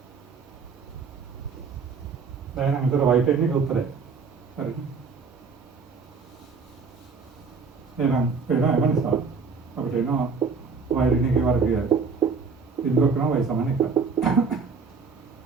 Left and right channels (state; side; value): quieter; left; 4.9 dB